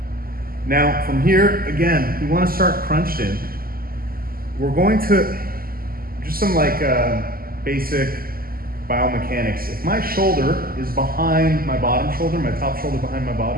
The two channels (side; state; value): left; late; 0.42 ms